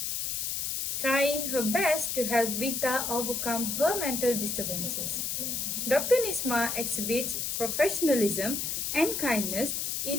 trying her best to help Vita overcome her mental disturbances. Dr. Nisma exhibits professionalism and kindness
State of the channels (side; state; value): left; noise; hiss, 1 dB below the sound